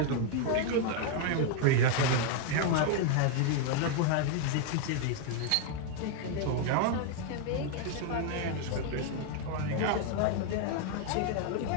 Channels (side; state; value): both; different; correlation 0.00